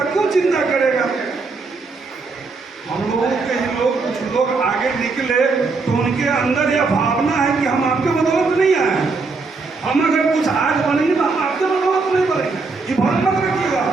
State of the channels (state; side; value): quieter; left; 4.1 dB